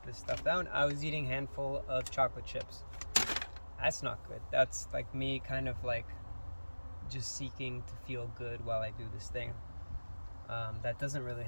this stuff down, I was eating a handful of chocolate chips. That's not good. That's like me kind of like just seeking to feel good while I do this thing. That doesn't really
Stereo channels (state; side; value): inverted; both; correlation -1.00